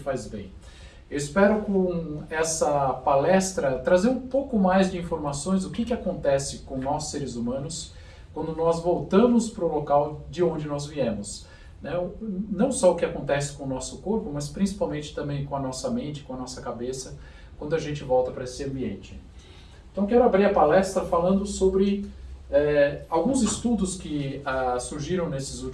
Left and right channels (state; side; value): identical; both; correlation 1.00